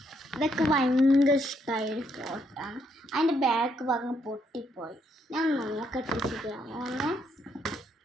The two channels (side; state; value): both; normal; correlation 0.74